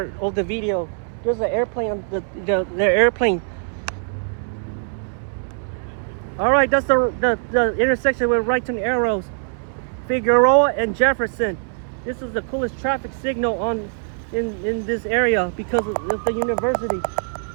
of the video. There's the airplane, the airplane. All right, that's the intersection with right turn arrows. Figueroa and Jefferson. This is the coolest traffic signal in this area because of the university.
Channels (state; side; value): silent; left; 64 dB below the other